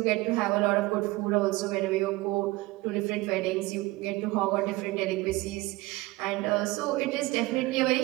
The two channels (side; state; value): left; quieter; 20.7 dB